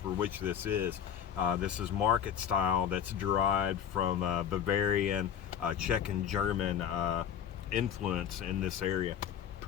which this is. This is market style that's derived from Bavarian, Czech and German influence in this area.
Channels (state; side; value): quieter; right; 8.9 dB